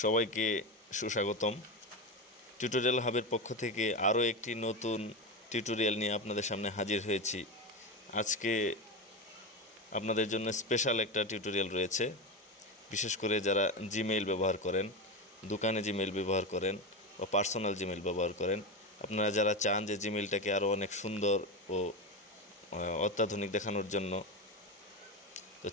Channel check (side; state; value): both; normal; correlation 0.18